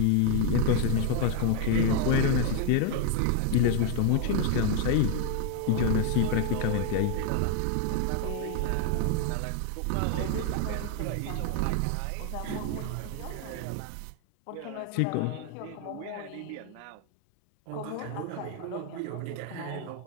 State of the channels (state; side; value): different; both; correlation 0.00